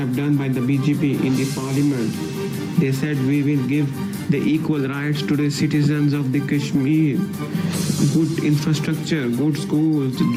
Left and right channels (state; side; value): identical; both; correlation 1.00